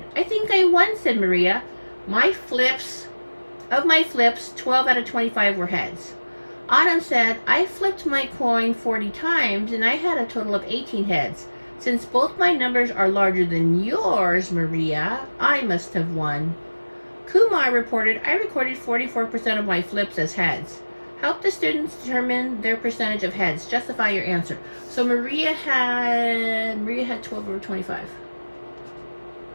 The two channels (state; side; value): inverted; both; correlation -1.00